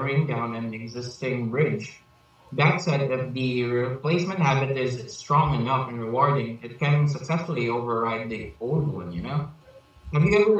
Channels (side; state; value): both; identical; correlation 1.00